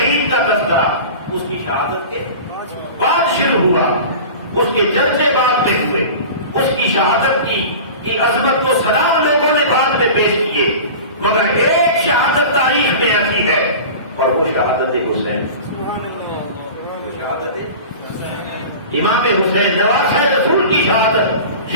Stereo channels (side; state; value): both; inverted; correlation -0.35